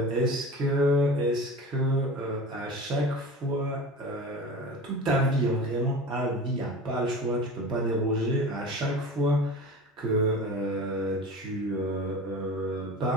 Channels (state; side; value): normal; both; correlation 0.34